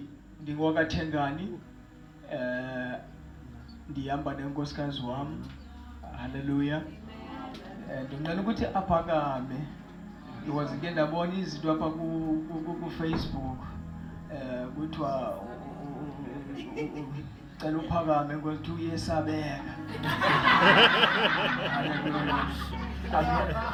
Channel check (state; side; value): identical; both; correlation 1.00